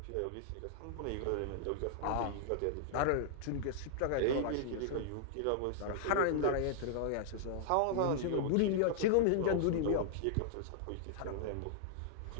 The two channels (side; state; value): both; different; correlation -0.01